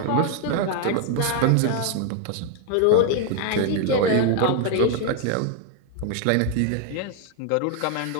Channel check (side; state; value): both; different; correlation 0.00